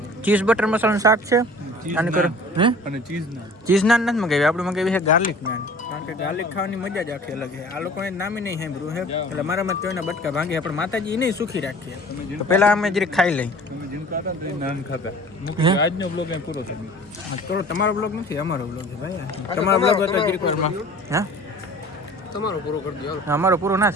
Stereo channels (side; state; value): both; normal; correlation 0.45